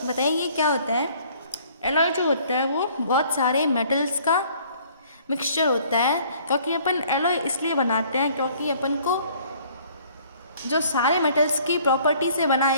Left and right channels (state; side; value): inverted; both; correlation -0.57